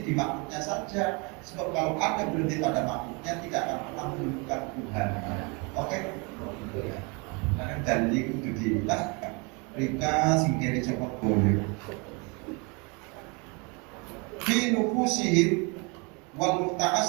di makhluknya saja. Sebab kalau Anda berhenti pada makhluknya, tidak akan pernah menemukan Tuhan. Oke? Karena dalil itu dijelaskan. Rika singkiri cepat boleh. Fi nufusihim wal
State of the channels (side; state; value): left; quieter; 30.8 dB